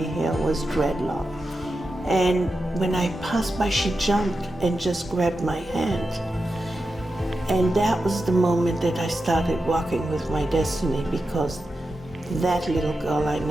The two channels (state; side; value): normal; both; correlation 0.90